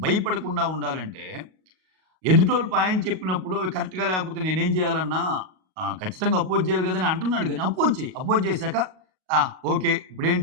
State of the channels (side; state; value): left; late; 38 ms